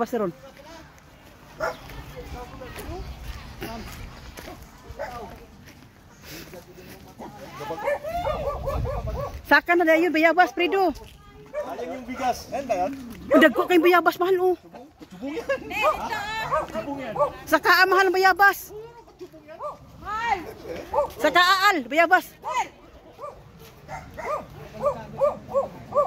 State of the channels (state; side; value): identical; both; correlation 1.00